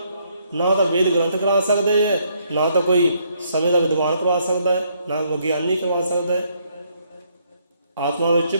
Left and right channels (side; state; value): both; inverted; correlation -0.71